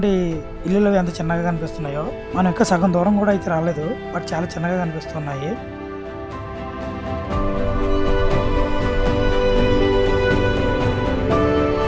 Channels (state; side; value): identical; both; correlation 1.00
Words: ఇల్లులు ఎంత చిన్నగా కనిపిస్తున్నాయో. మనం ఇంకా సగం దూరం కూడా అయితే రాలేదు, బట్ చాలా చిన్నగా కనిపిస్తున్నాయి.